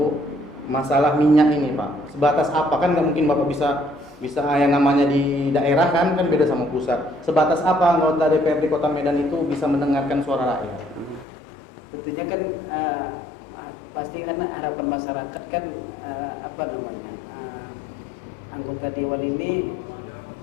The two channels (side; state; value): right; drops out; at 11.2 s